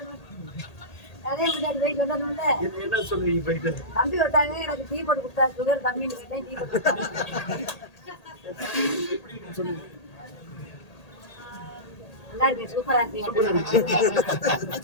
அதே முன்னாடி போய் சொல்லணும்ல. என்ன சொல்றீங்க? போயிட்டு தம்பி வந்தாங்க, எனக்கு டீ போட்டு கொடுத்தா, சுகர் கம்மின்னு கேட்டேன், டீ போட்டு கொடுத்தாங்க. நல்லா இருக்கு, சூப்பரா இருக்கு.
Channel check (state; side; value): late; right; 1.8 ms